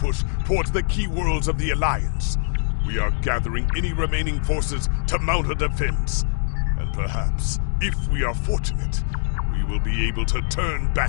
towards the key worlds of the Alliance. We are gathering any remaining forces to mount a defense. And perhaps, if we are fortunate, we will be able to turn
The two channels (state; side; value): silent; right; digital silence